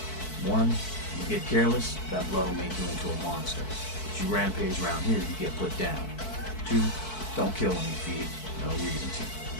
1, you get careless, that blood will make you into a monster. If you rampage around here, you get put down. 2, don't kill when you feed. No reason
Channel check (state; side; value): late; right; 4.6 ms